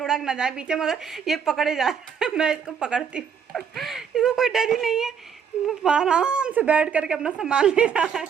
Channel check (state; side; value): quieter; left; 7.2 dB